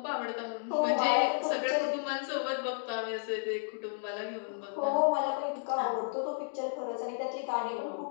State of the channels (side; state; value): right; silent; digital silence